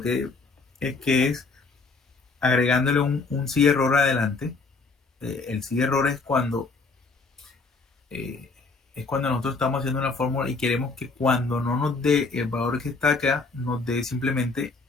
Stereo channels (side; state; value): right; quieter; 4.1 dB